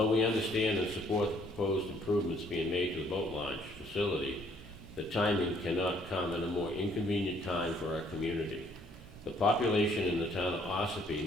we understand and support the proposed improvements being made to the boat launch facility, the timing cannot come at a more inconvenient time for our community. The population in the town of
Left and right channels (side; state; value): both; normal; correlation 0.64